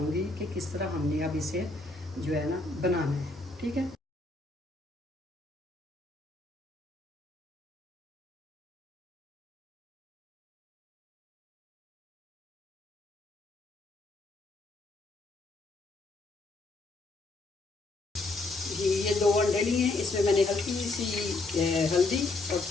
कि किस तरह हमने अब इसे जो है ना बनाना है। ठीक है। जी, ये 2 अंडे लिए हैं। इसमें मैंने हल्की सी हल्दी और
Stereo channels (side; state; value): right; quieter; 3.2 dB